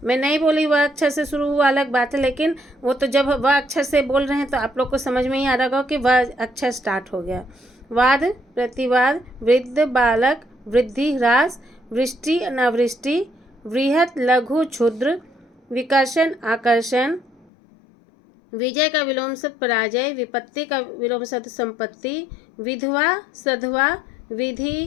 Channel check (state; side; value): drops out; right; at 17.4 s